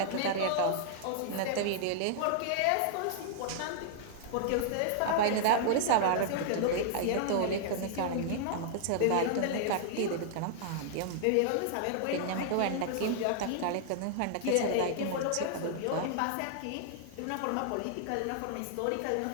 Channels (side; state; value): both; different; correlation -0.01